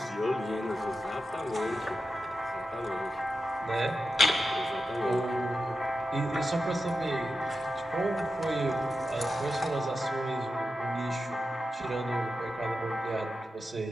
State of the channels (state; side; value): normal; both; correlation 0.90